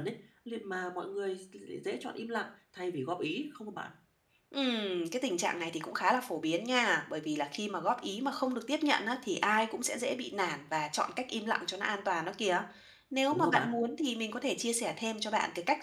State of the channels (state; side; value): identical; both; correlation 1.00